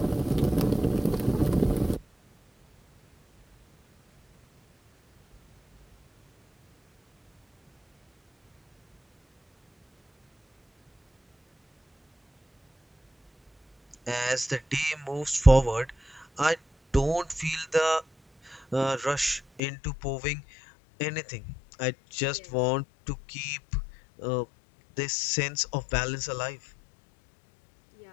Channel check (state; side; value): drops out; right; at 19.6 s